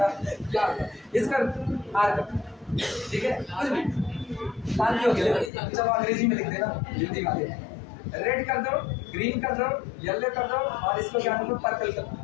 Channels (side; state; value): right; drops out; at 5.5 s